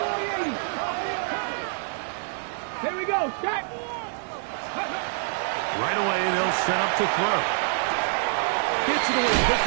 80. Here we go. Set. Right away, they'll set up to throw. Gets it away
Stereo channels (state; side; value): silent; left; digital silence